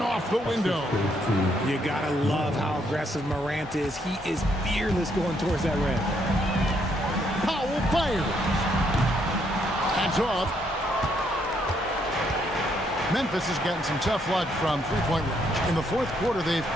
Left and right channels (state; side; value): normal; both; correlation 0.73